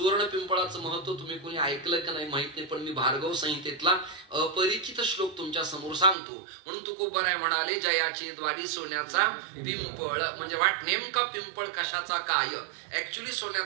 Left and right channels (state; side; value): drops out; left; at 6.2 s